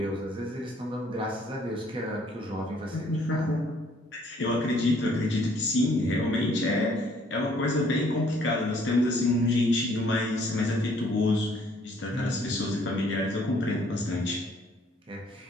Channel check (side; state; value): both; normal; correlation 0.62